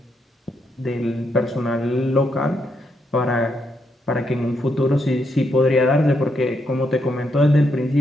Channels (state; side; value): normal; both; correlation 0.79